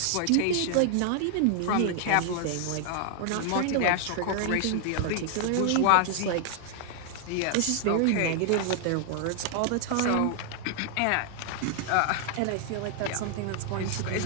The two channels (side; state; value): both; different; correlation 0.00